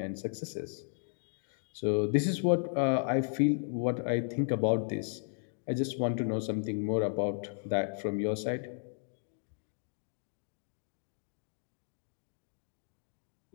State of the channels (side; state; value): right; silent; digital silence